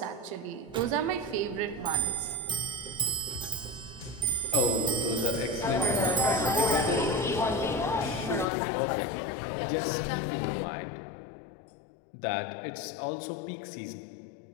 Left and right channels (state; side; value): drops out; right; at 8.5 s